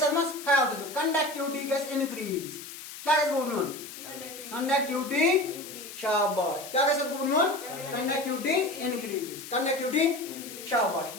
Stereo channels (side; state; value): left; noise; hiss, 12 dB below the sound